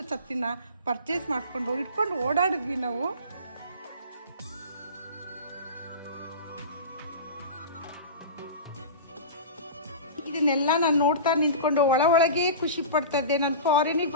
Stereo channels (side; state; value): both; inverted; correlation -0.31